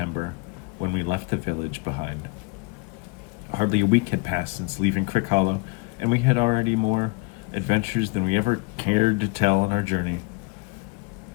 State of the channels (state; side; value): quieter; right; 28.0 dB